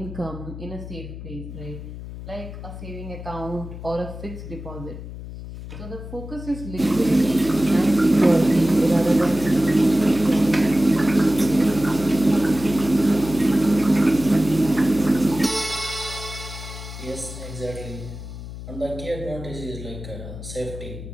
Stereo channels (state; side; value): noise; left; hum, 11 dB below the sound